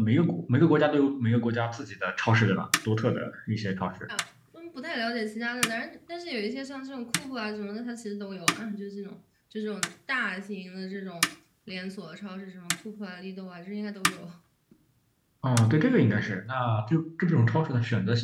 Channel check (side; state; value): both; identical; correlation 1.00